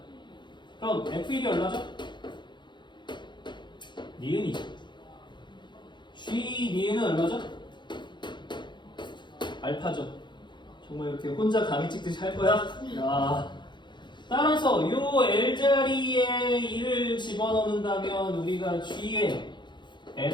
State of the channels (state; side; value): late; right; 0.22 ms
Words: 그럼 f1이 얼마죠? 니은이죠. G 니은은 얼마죠? 알파죠. 정말 이렇게 혼자 강의 찍듯이 할 거야? 야. 따라서 요 L자리에 1을 집어넣는다면 우리가 G에